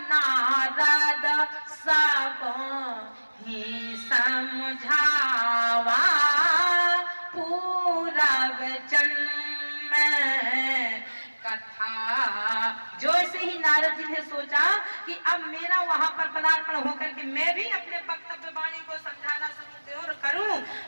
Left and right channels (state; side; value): inverted; both; correlation -1.00